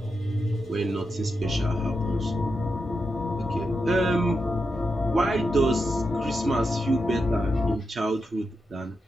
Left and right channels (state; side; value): normal; both; correlation 0.87